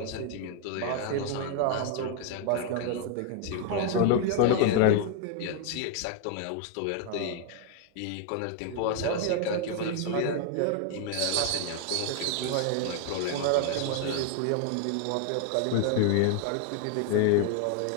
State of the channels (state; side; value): different; both; correlation 0.00